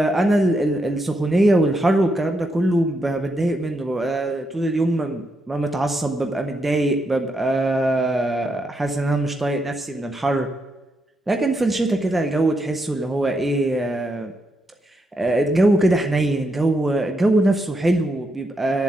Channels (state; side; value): normal; both; correlation 0.81